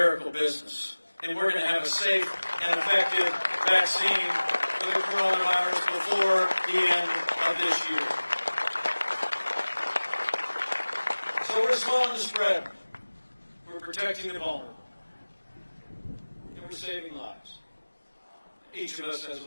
business. And we're going to have a safe and effective vaccine for the coronavirus before the end of this year. So we're slowing the spread. We're protecting the vulnerable. And we're saving lives. Each of us has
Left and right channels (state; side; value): inverted; both; correlation -1.00